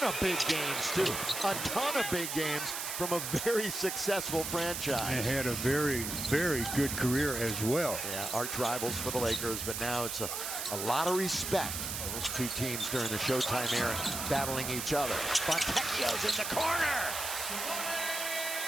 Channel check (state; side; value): noise; right; hiss, 4 dB below the sound